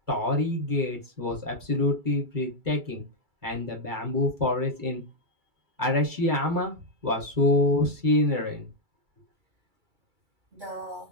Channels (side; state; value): left; late; 2.3 ms